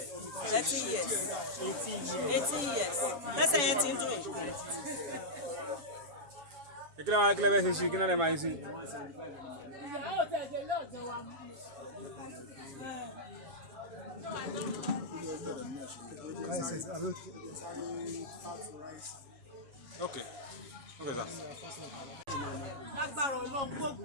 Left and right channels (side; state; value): left; late; 7.0 ms